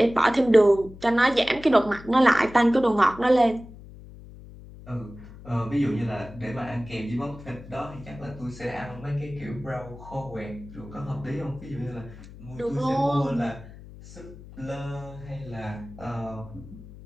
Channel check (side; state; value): left; noise; hum, 17 dB below the sound